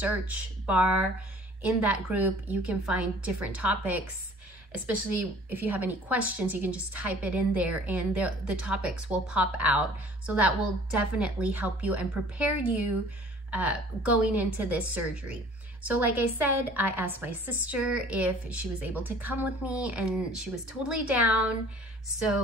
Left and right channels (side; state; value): both; normal; correlation 0.51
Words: bar in that group, you can find different topics. Especially if you have any questions, you can just type it in there and the topics will pop out. So that will definitely help you and prepare you going into this surgery. So like I said, I asked my sister if she was able to come with me, and she was totally down.